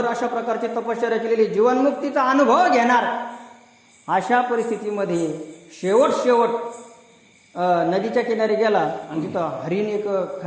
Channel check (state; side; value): identical; both; correlation 1.00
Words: अशा प्रकारची तपश्चर्या केलेली, जीवनमुक्तीचा अनुभव घेणार. अशा परिस्थितीमध्ये शेवट नदीच्या किनारी गेला आणि तिथं हरिण, एक